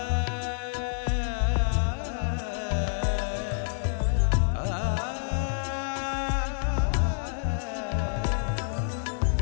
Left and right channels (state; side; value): silent; right; 59 dB below the other